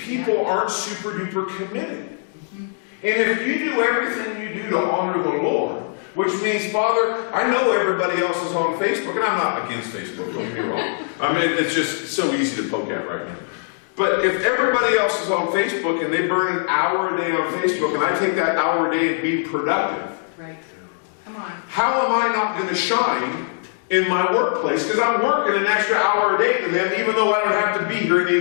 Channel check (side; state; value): right; silent; digital silence